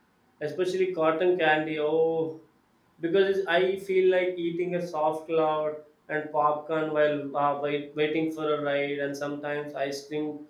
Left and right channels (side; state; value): both; identical; correlation 1.00